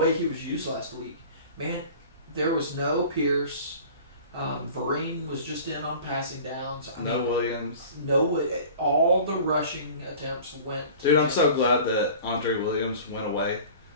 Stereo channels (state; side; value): inverted; both; correlation -0.42